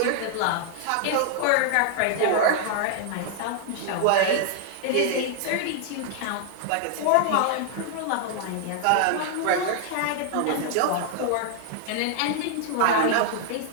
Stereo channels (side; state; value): both; different; correlation 0.00